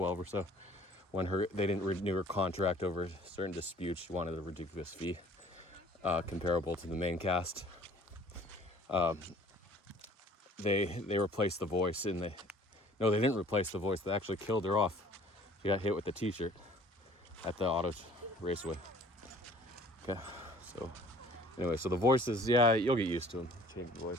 or so, when they didn't renew her contract over certain disputes, she wanted a ridiculous fee comparable to the main cast. They replaced the voice No, they didn't replace the voice. They actually killed her off. She got hit with the t-shirt at the auto raceway. Okay, so anyway, so the voices, yeah, you'll get used to them. Change the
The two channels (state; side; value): normal; both; correlation 0.52